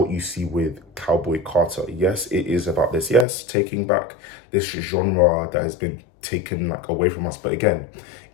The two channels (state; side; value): drops out; right; at 3.2 s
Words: you see with Cowboy Carter. Yes, it is about this, yes, taking back this genre that has been taken like away from us. But again,